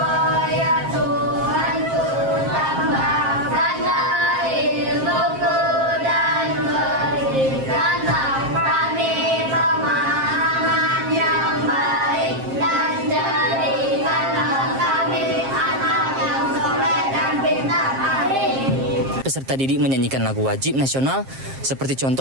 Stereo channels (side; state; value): left; late; 7.5 ms